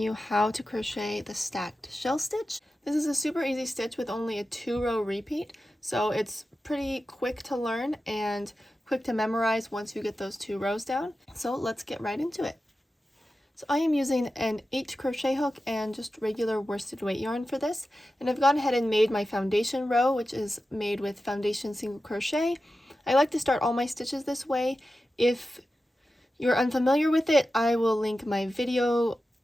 how to crochet the stacked shell stitch. This is a super easy stitch with only a 2-row repeat, so it's pretty quick to learn and quick to memorize once you get those 2 rows down. So let's get right into it. So I am using an H crochet hook and just regular worsted weight yarn for this, and I've gone ahead and made my foundation row, which is made with foundation single crochet. I like to start all my stitches this way. If you're unfamiliar with it, I will link my video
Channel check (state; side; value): normal; both; correlation 0.93